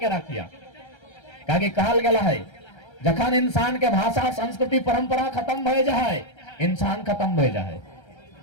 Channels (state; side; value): late; right; 1.3 ms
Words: रखिया, काहे कहल गया है जखन इंसान के भाषा संस्कृति परंपरा खत्म भय जाए इंसान खत्म भय जाए।